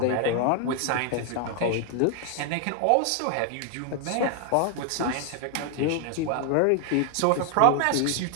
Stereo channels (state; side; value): different; both; correlation 0.01